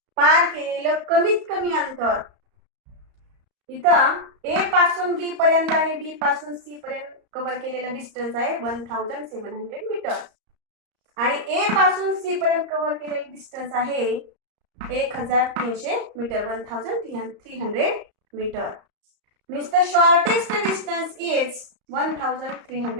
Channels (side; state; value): left; late; 34 ms